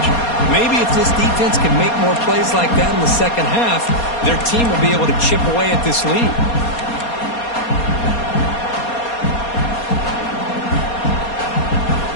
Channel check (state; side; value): late; right; 4.2 ms